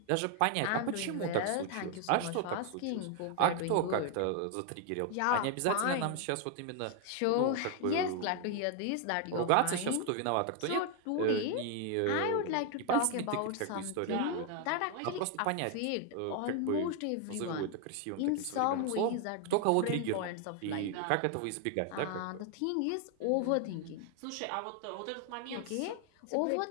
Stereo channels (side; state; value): both; different; correlation 0.00